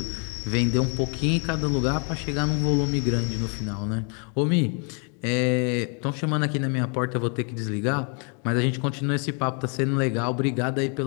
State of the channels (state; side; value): quieter; right; 38.3 dB